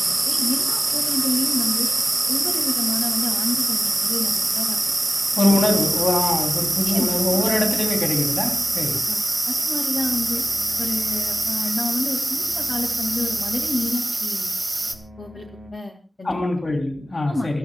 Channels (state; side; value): normal; both; correlation 0.95